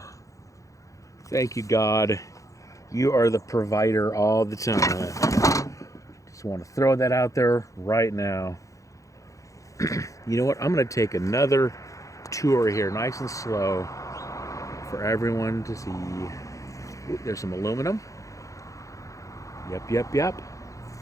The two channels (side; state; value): right; late; 0.16 ms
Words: Thank you, God. You are the provider all the time. Just want to throw that out there right now. You know what? I'm going to take another tour here, nice and slow, for everyone to see. Ooh, there's some aluminum. Yep.